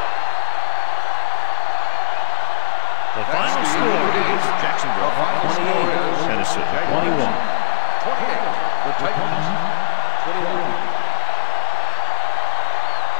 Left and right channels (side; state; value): right; silent; 62 dB below the other